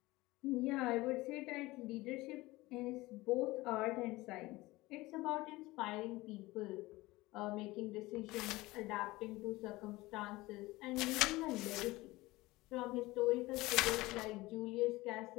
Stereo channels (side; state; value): right; quieter; 20.1 dB